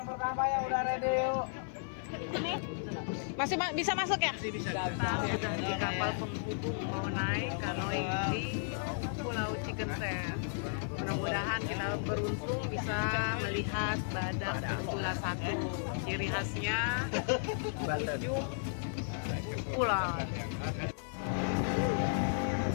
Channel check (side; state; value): right; silent; 55 dB below the other